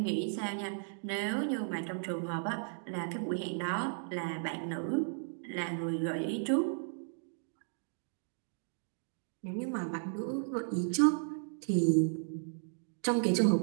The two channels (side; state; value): left; silent; digital silence